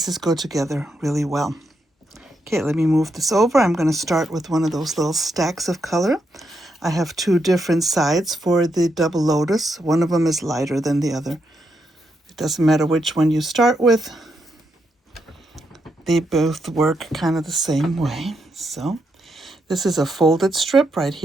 go together really well. Okay, let me move this over. I'm going to start with one of those little stacks of color. I have two different sides for the double lotus. One of them is lighter than the other. It doesn't matter which one you start with. They both work kind of the same way. So this is a folded strip right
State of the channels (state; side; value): normal; both; correlation 0.81